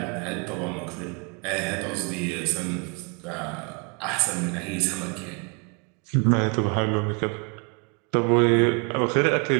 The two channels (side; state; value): left; quieter; 33.8 dB